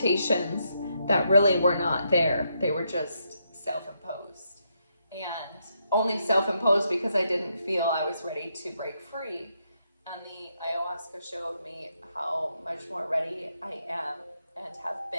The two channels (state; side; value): inverted; both; correlation -0.79